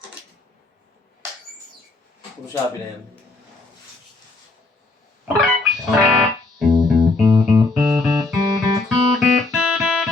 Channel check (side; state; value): right; quieter; 3.3 dB